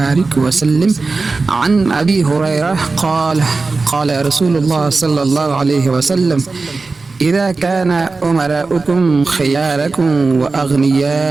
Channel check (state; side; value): quieter; left; 3.9 dB